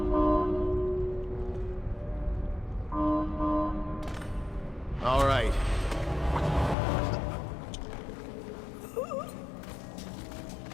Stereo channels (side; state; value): right; drops out; at 6.8 s